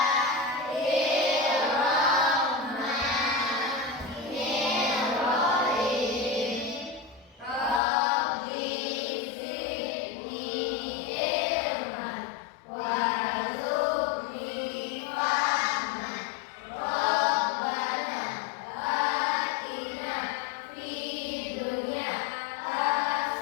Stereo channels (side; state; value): right; drops out; at 7.8 s